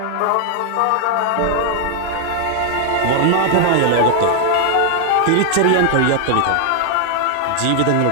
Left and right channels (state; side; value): different; both; correlation 0.00